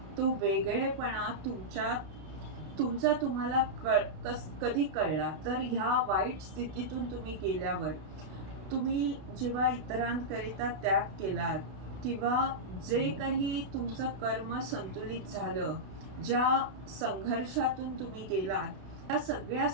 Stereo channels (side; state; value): left; late; 32 ms